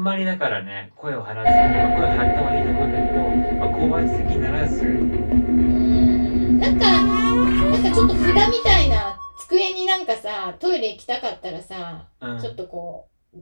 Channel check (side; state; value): both; inverted; correlation -1.00